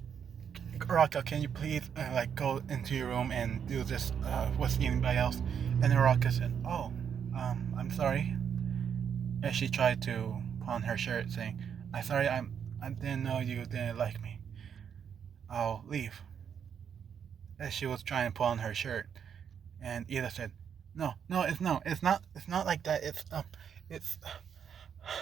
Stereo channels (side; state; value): left; quieter; 7.8 dB